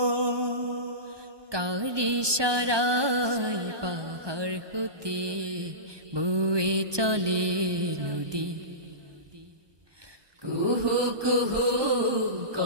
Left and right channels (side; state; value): left; late; 1.2 ms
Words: কার ইশারায় পাহাড় হতে বয়ে চলে নদী? কুহু কুহু